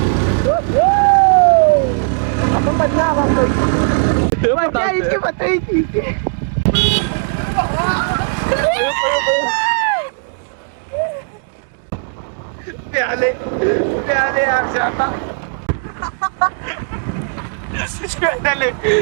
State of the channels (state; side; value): silent; left; digital silence